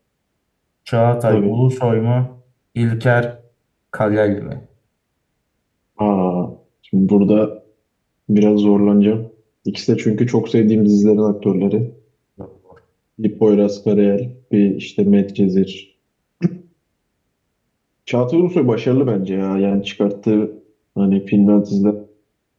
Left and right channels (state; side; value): identical; both; correlation 1.00